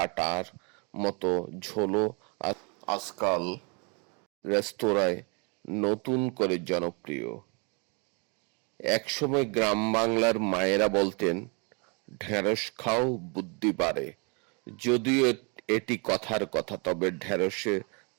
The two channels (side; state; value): left; quieter; 33.8 dB